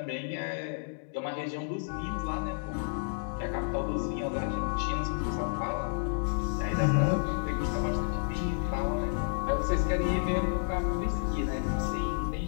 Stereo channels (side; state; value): right; silent; digital silence